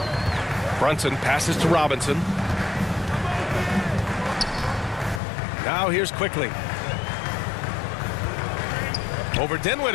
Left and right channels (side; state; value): right; drops out; at 5.2 s